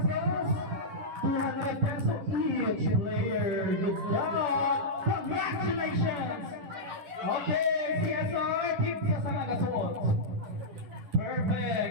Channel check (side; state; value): left; late; 10 ms